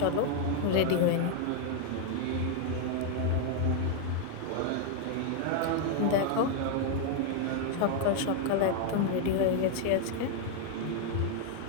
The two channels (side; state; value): both; different; correlation 0.00